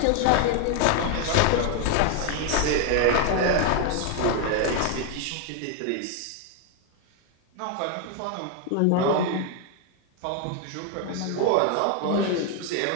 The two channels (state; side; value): different; both; correlation 0.01